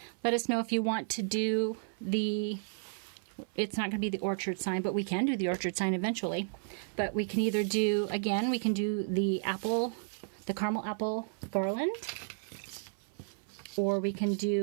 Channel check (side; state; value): left; silent; 56 dB below the other